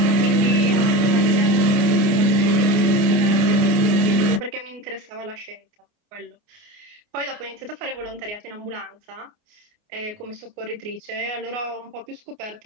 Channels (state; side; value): late; left; 29 ms